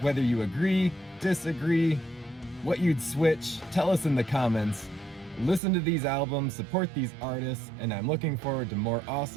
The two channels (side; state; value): left; drops out; at 5.6 s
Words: you agree, disagree, what you'd switch. Tell us in the comments. Listen to these albums, support these artists, and I'm looking forward to more